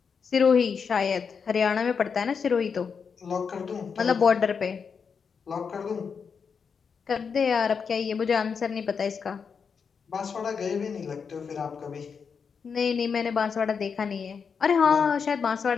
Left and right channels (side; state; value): right; quieter; 6.1 dB